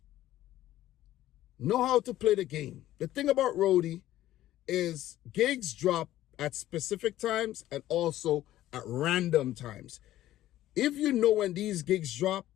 Know how to play the game. The thing about Roadie is gigs drop at specific times and also at random times. If you know when these gigs drop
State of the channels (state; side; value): quieter; right; 14.0 dB